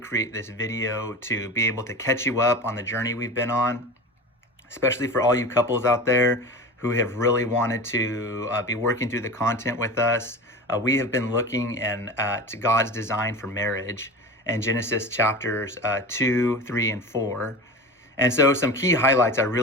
this video to be able to catch you up on the journey we've been on, especially for all you couples out there who have really wanted to be working through the content with us. We have been looking at God's design for marriage in Genesis chapters 2, 3, and 4. And so some key highlights I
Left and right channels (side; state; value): both; normal; correlation 0.31